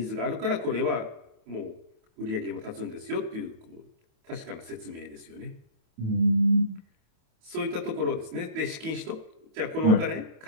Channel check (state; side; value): late; left; 28 ms